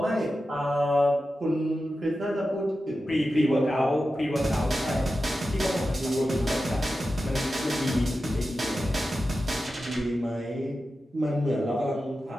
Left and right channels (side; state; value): both; normal; correlation 0.92